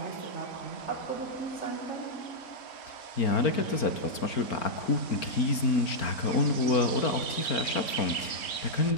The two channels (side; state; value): right; late; 4.4 ms